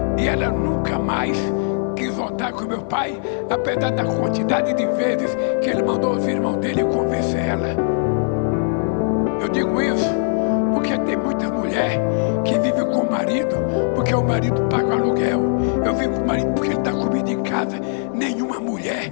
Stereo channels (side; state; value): right; silent; 65 dB below the other